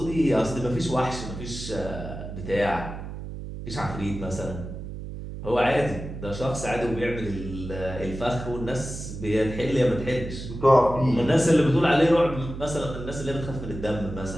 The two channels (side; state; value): right; noise; hum, 9 dB below the sound